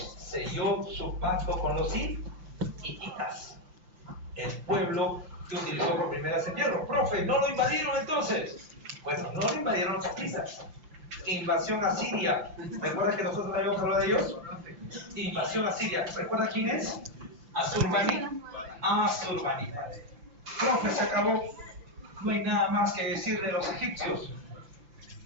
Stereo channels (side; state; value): left; late; 5.9 ms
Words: selló su pacto con los hititas, el pueblo que utilizó por primera vez el hierro. Profe, ¿no lo invadieron entonces? Bueno, no lo invadieron los hititas. Invasión a Siria. ¿Recuerdas que nosotros habíamos hablado de ellos? Invasión a Siria. ¿Recuerdas quién es? Asurbanipal. Profe, se acabó. No hay nada más que decir de los egipcios.